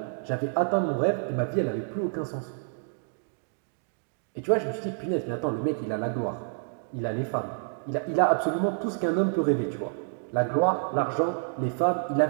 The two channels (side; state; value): left; silent; digital silence